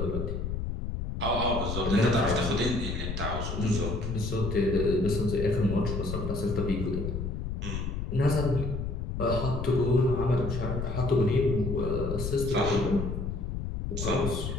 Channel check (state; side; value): noise; left; rumble, 3 dB below the sound